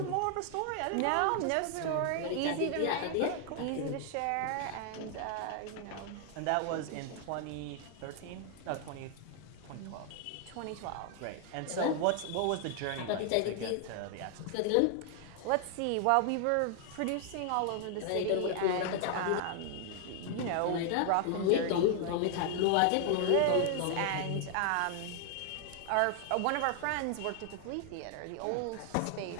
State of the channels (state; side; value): different; both; correlation 0.00